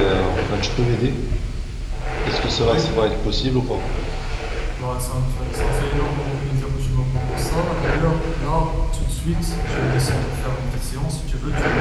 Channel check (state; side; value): identical; both; correlation 1.00